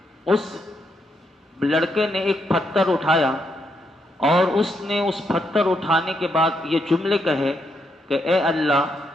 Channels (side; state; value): both; normal; correlation 0.78